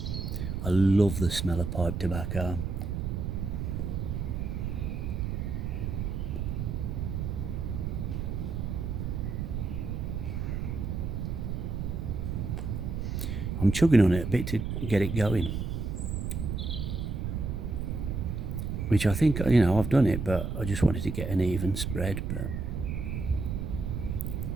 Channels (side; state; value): right; noise; rumble, 2 dB below the sound